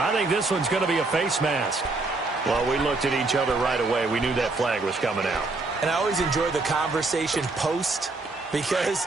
think this one's going to be a face mask. Well, we looked at each other right away. We knew that flag was coming out. And I always enjoy the conversation post because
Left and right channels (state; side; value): quieter; left; 3.4 dB